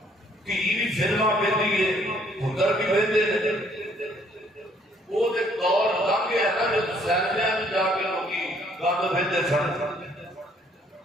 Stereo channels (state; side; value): normal; both; correlation 0.64